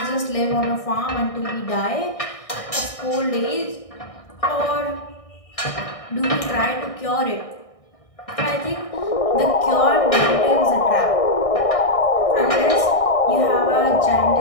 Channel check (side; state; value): right; late; 1.6 ms